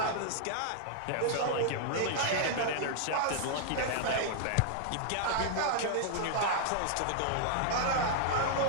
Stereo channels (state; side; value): different; both; correlation -0.01